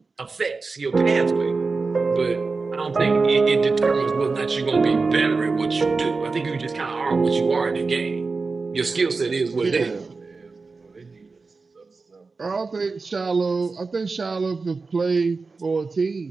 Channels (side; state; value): left; quieter; 4.2 dB